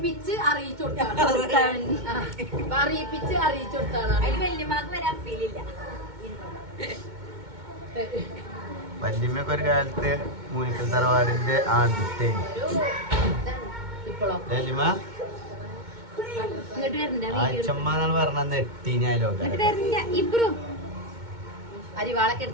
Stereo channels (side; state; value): left; late; 2.2 ms